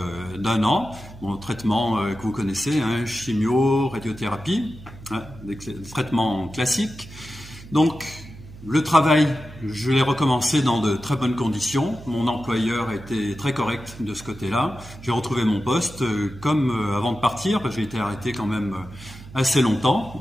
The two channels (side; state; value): right; noise; hum, 17 dB below the sound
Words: d'un an. Mon traitement que vous connaissez, chimio, radiothérapie, des traitements classiques. Donc le travail, je l'ai recommencé dans de très bonnes conditions. Mon employeur a été très correct de ce côté-là. J'ai retrouvé mon poste comme avant de partir, parce que j'ai été arrêté quand même assez longtemps.